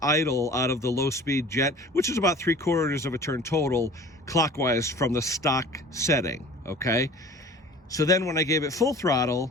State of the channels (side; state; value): both; normal; correlation 0.44